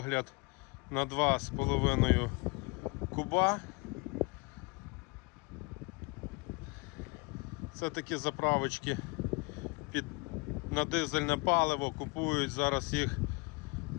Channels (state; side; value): quieter; right; 28.0 dB